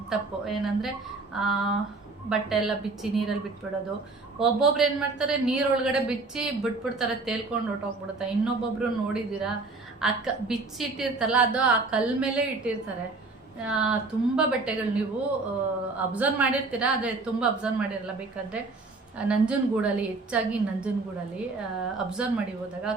ತಪ್ಪು. ಏನಂದರೆ ಬಟ್ಟೆ ಎಲ್ಲ ಬಿಚ್ಚಿ ನೀರಲ್ಲಿ ಬಿಟ್ಬಿಡೋದು. ಒಬ್ಬೊಬ್ರು ಏನು ಮಾಡ್ತಾರೆ, ನೀರೊಳಗಡೆ ಬಿಚ್ಚಿ ಬಿಟ್ಬಿಡ್ತಾರೆ, ತೇಲ್ಕೊಂಡು ಹೊಟ್ಟೋಗ್ಬಿಡುತ್ತೆ. ಇನ್ನೊಬ್ಬೊಬ್ರು ನೋಡಿದ್ದೀರಾ, ಬಿಚ್ಚಿ ಇಟ್ಟಿರ್ತಲ್ಲ ಅದು ಆ ಕಲ್ ಮೇಲೆ ಇಟ್ಟಿರ್ತಾರೆ. ತುಂಬ ಬಟ್ಟೆಗಳು ನೀವು ಅಬ್ಸರ್ವ್ ಮಾಡಿರ್ತೀರಾ, ಆದರೆ ತುಂಬ ಅಬ್ಸರ್ವ್ ಮಾಡಿರಲ್ಲ. ಬೇಕಾದರೆ ನಂಜನಗೂಡಲ್ಲಿ, ಹೆಚ್ಚಾಗಿ ನಂಜನಗೂಡಲ್ಲಿ ಅಬ್ಸರ್ವ್ ಮಾಡಿ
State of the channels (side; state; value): left; quieter; 3.6 dB